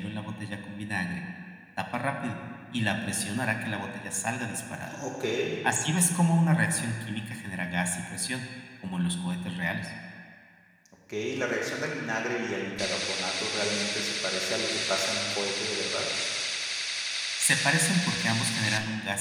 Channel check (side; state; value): both; identical; correlation 1.00